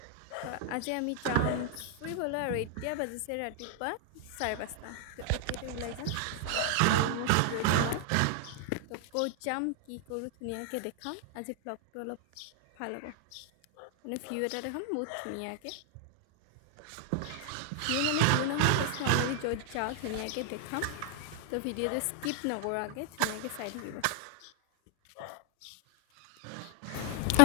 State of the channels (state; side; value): different; both; correlation 0.00